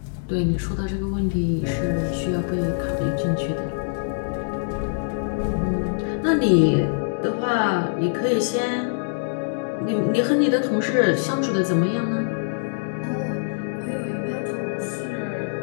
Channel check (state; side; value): silent; right; digital silence